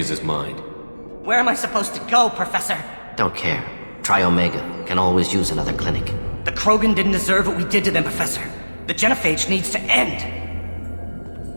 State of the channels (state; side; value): inverted; both; correlation -1.00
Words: his mind. Where am I supposed to go, Professor? Don't care. Try Omega. Can always use another clinic. The Krogan didn't deserve what we did to them, Professor. The Genophage needs to end.